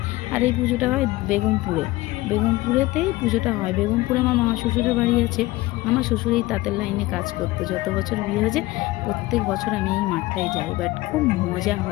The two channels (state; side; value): quieter; right; 19.1 dB